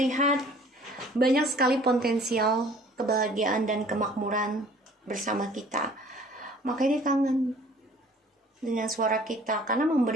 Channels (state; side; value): normal; both; correlation 0.52